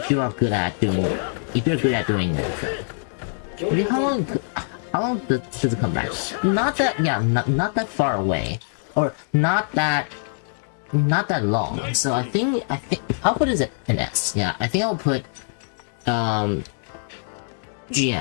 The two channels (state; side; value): silent; right; digital silence